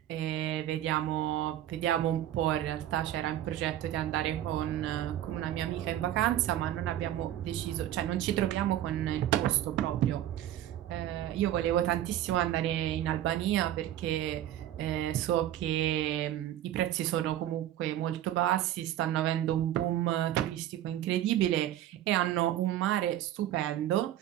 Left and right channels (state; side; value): quieter; left; 12.4 dB